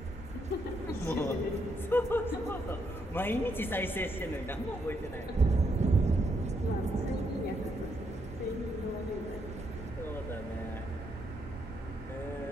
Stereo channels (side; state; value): both; normal; correlation 0.77